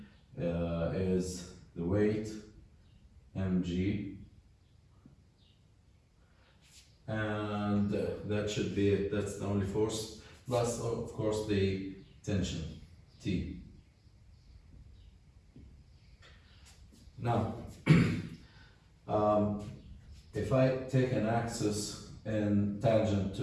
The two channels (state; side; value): identical; both; correlation 1.00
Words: is the weight, mg, and that's the only force, plus of course the tension, T. Now, if I take an axis in tangent